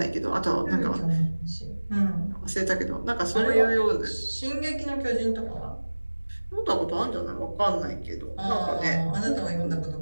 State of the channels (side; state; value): both; inverted; correlation -1.00